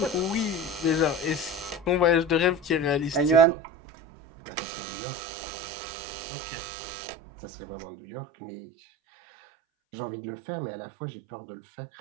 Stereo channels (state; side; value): drops out; left; at 3.5 s